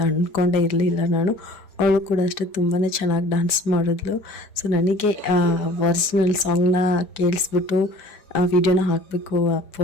ಅಂದ್ಕೊಂಡೇ ಇರಲಿಲ್ಲ ನಾನು. ಅವಳು ಕೂಡ ಅಷ್ಟೇ ತುಂಬಾ ಚೆನ್ನಾಗಿ ಡಾನ್ಸ್ ಮಾಡಿದ್ಲು. ಸೊ ನನಗೆ ಒರಿಜಿನಲ್ ಸಾಂಗ್ನ ಕೇಳಿಸ್ಬಿಟ್ಟು ವಿಡಿಯೋನ ಹಾಕಬೇಕು,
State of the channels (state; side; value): late; right; 5.1 ms